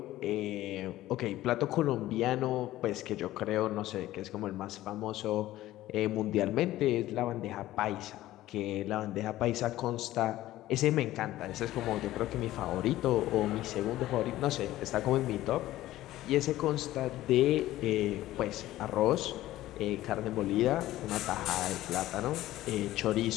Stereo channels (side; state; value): right; quieter; 15.2 dB